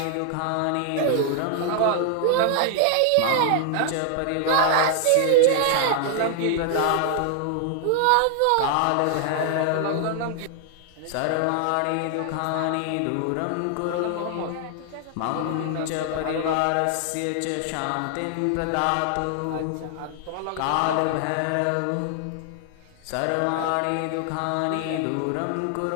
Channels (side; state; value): both; different; correlation 0.00